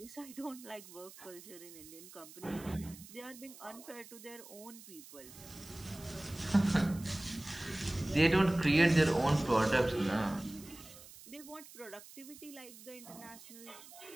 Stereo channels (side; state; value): right; noise; hiss, 18 dB below the sound